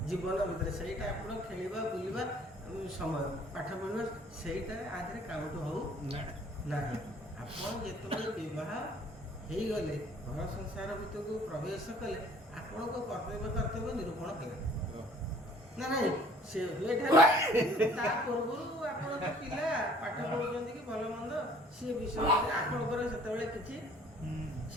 ଜୀବନ ଭିତରେ। ସେଇଟା ଆପଣ ଖେଳିବା ବୁଲିବା ସମୟ, ପାଠ ପଢ଼ିବା, ସେଇଟା ଆଧିରେ କାଉଣ୍ଟ ହଉ ନାହିଁ। ଆପଣ ଯେତେବେଳେ ବିବାହ ହେଇଗଲେ, ଘର ସଂସାର ଭିତରକୁ ପ୍ରବେଶ କଲେ, ଆପଣଙ୍କ କର୍ତ୍ତବ୍ୟ ନିରୂପଣ କଲେ ନା ନାହିଁ। ସେ ତା ପୂର୍ବରୁ ଆପଣ ତ ପିଲା ପାଠ ପଢ଼ୁଛନ୍ତି କି ଭଲ ମନ୍ଦ, ସିଏ ବିଷୟରେ ଆପଣଙ୍କର ସେତେବେଳେ କିଛି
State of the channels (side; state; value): both; normal; correlation 0.55